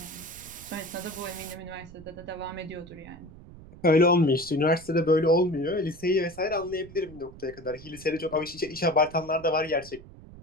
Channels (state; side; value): noise; right; rumble, 18 dB below the sound